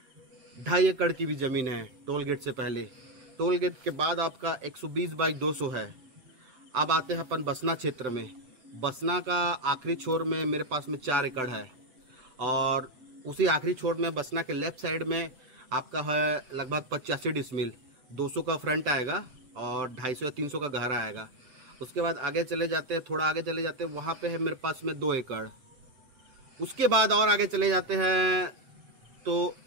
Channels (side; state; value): left; late; 8.0 ms